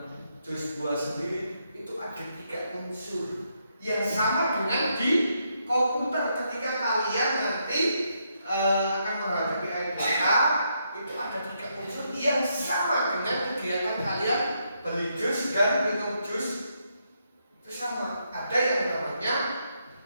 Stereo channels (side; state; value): both; inverted; correlation -0.78